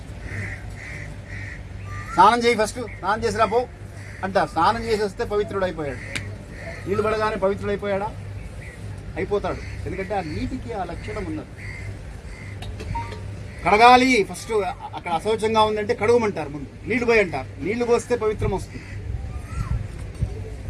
స్నానం చేయి, ఫస్ట్ స్నానం చేసిరా పో అంటారు. స్నానం చేసి వస్తే పవిత్రుడు అయిపోయాడు. నీళ్ళు పడగానే పవిత్రుడు అయిపోయాడా? అయిపోతాడు. ఎందుకంటే ఆ నీటికి ఆ లక్షణం ఉన్నది. కడగాలి ఫస్ట్, అక్కడ అశౌచంగా ఉందంటే కడుగుమంటారు. ముందు నీళ్లు పోయి అంటారు. నీళ్లు పోస్తే పవిత్రం వస్తుంది.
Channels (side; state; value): both; identical; correlation 1.00